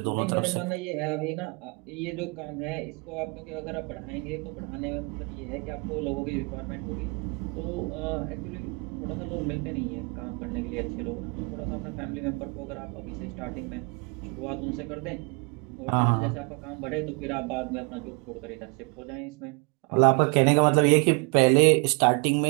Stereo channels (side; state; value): left; quieter; 32.5 dB